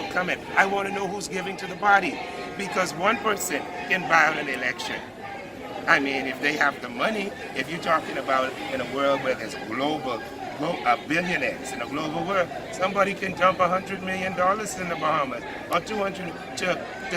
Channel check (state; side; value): identical; both; correlation 1.00